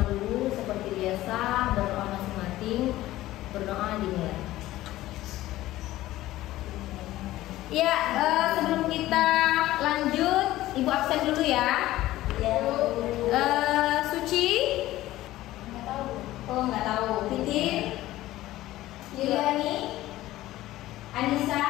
dulu seperti biasa, berdoa masing-masing, berdoa dimulai. Ya, sebelum kita lanjut, Ibu absen dulu ya. Suci? Nggak tahu. Oh, nggak tahu. Titin? Yuliani? Anissa?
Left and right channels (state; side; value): quieter; right; 15.8 dB